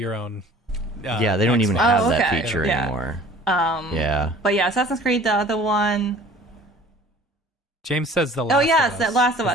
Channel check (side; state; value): both; normal; correlation 0.49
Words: own. Yeah, they don't even Xbox. have Oh, that okay. feature Yeah. anymore. Yeah. But yeah, Assassin's Creed, the other one. James says the Last Oh yes, of that Us. Last of Is